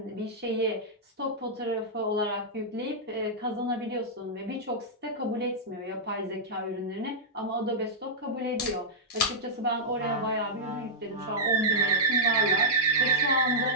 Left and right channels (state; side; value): normal; both; correlation -0.08